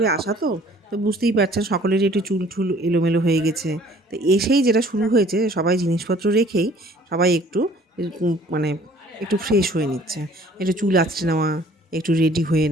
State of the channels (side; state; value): both; normal; correlation 0.55